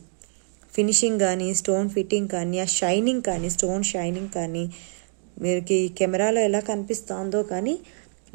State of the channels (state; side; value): silent; left; digital silence